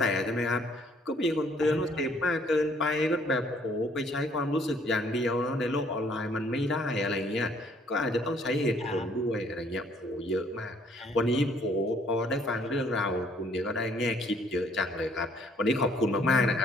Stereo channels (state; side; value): normal; both; correlation 0.63